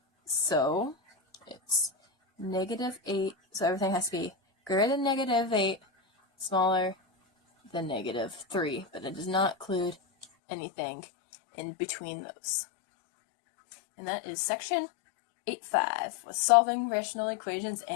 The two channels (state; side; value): drops out; right; at 10.2 s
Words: So it's negative 8. So everything has to be greater than negative 8, smaller than negative 3. But it does not include anything in between those. And that is section 8.5 with solving rational equations